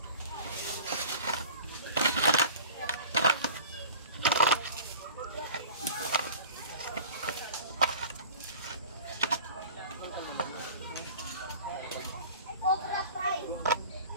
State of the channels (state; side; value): inverted; both; correlation -0.42